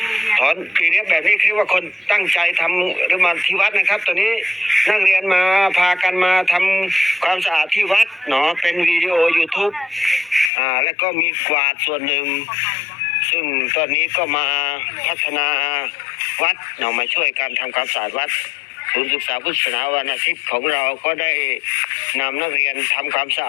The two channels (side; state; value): right; drops out; at 10.5 s